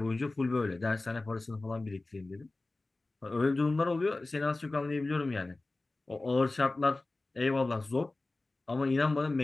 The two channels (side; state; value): right; quieter; 3.1 dB